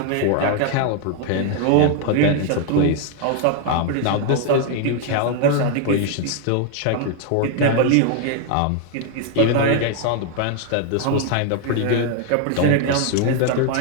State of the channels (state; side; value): different; both; correlation 0.00